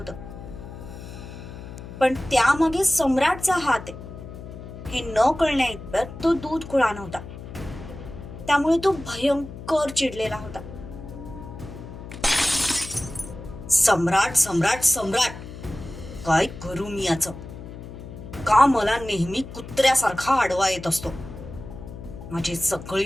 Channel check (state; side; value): noise; left; hum, 12 dB below the sound